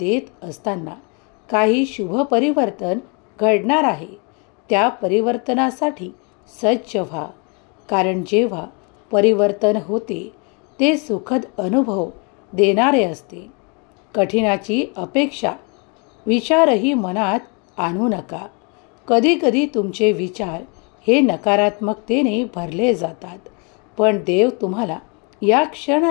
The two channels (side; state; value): right; quieter; 34.2 dB